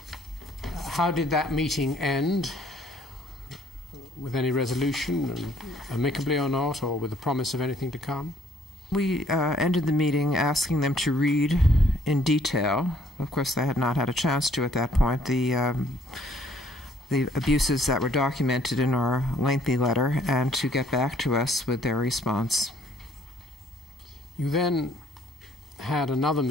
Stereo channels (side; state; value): both; normal; correlation 0.62